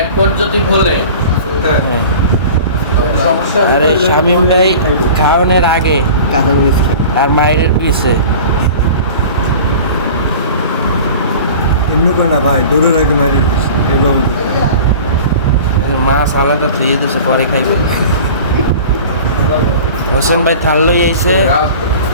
পর্যটক হলে হ্যাঁ। সমস্যা আর এই শামীম ভাই খাওয়ানোর আগে কাঁচা মরিচ খাই। আর মায়ের পিছে। এমনি করে না ভাই, দৌড়ের আগে মারি এভাবে। মাছ আলাদা ধুয়ে দিছে, পরে খাইবে। হোসেন ভাই থাল লই আইছে,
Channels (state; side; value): inverted; both; correlation -0.40